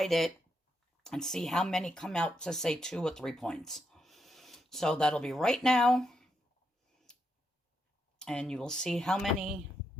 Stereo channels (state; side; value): normal; both; correlation 0.81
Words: it and see how many come out to, say, 2 or 3 points. So that'll be right now. And you will see how many